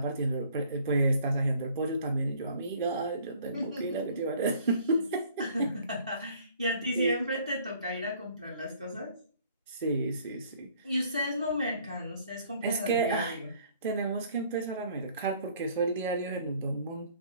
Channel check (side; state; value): both; inverted; correlation -0.57